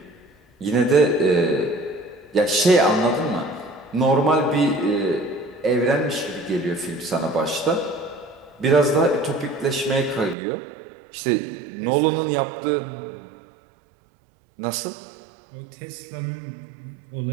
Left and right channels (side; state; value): left; drops out; at 10.4 s